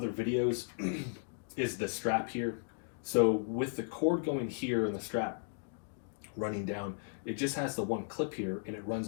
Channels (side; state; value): right; silent; digital silence